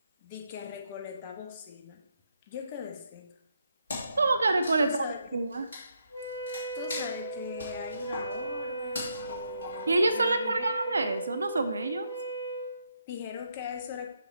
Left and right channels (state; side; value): inverted; both; correlation -0.77